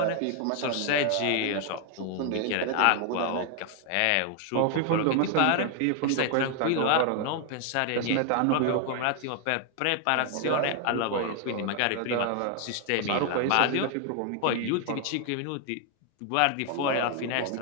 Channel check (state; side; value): different; both; correlation 0.00